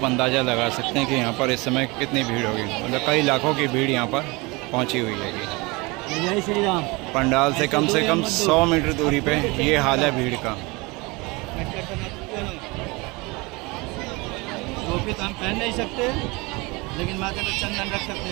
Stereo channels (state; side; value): quieter; left; 25.3 dB